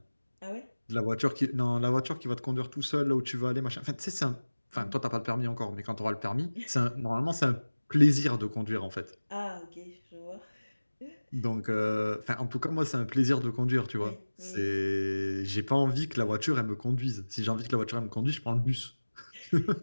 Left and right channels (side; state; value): both; inverted; correlation -1.00